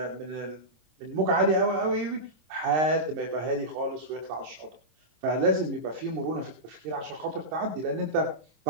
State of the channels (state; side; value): late; left; 26 ms